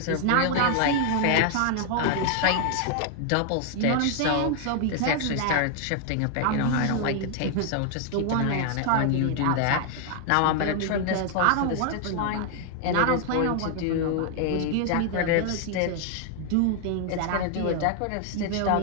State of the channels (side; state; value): both; different; correlation 0.00